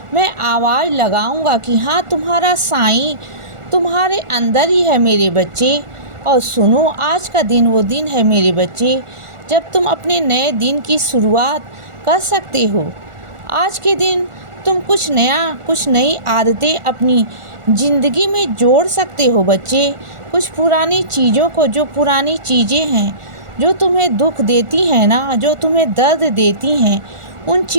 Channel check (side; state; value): left; late; 1.4 ms